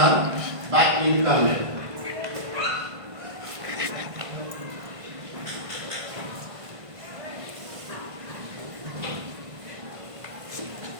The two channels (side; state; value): left; late; 1.5 ms